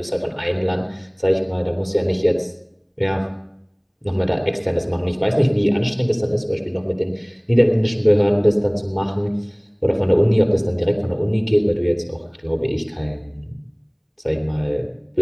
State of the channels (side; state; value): both; identical; correlation 1.00